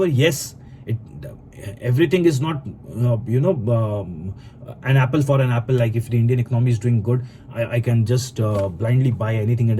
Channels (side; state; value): both; identical; correlation 1.00